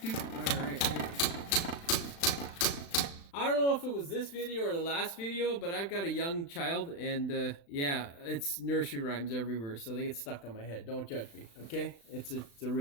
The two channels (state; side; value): late; right; 35 ms